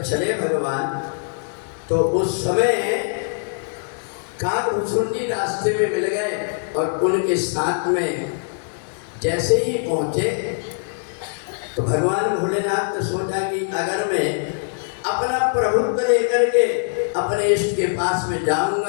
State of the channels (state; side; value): silent; right; 64 dB below the other